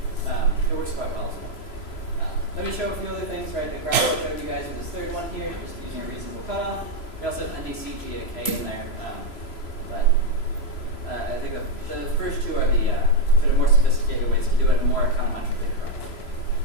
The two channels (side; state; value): right; late; 3.0 ms